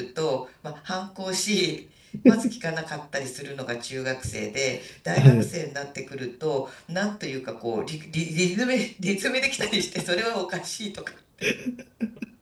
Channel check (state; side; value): identical; both; correlation 1.00